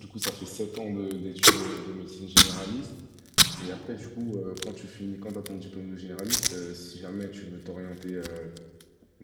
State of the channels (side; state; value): both; identical; correlation 1.00